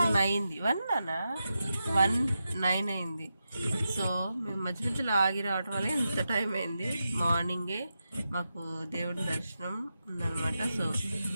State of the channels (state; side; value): inverted; both; correlation -0.89